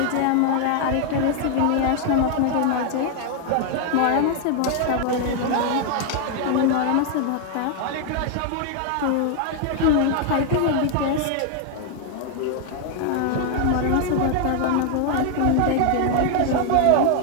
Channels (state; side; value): different; both; correlation 0.00